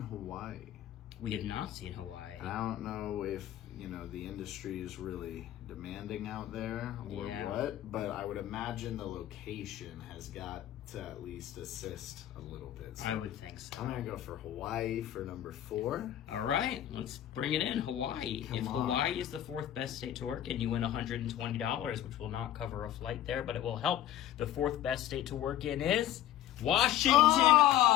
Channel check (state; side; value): quieter; right; 12.2 dB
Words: Hawaii. We have not seen Hawaii. And I don't know if, the industry is really demanding out there or Yeah. what, but I would imagine the location has got to at least assist a little bit. So I would think so. I'm going to go for Hawaii for number 4. All right, let's bring it in. Hawaii. If on. Hawaii is the 4th best state to work in, you win $120, which will not cover a flight there, but it will help. The 4th best state to work in is Washington.